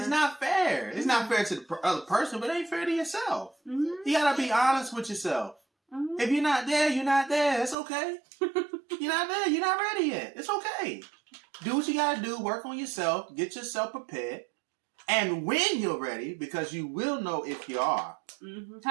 not fair. It's not fair to the other person, but it ain't fair to yourself. You gotta be honest with yourself. If you're not there, you're not there. It's okay. You're not there. You're not ready yet. It's okay. Do what you gotta do. Work on yourself. Get yourself prepared. And when you're ready, because you will know if you are.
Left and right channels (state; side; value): drops out; left; at 7.8 s